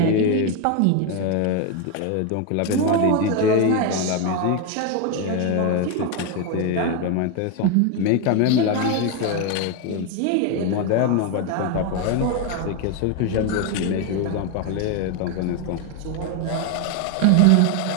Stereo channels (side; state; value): both; different; correlation 0.02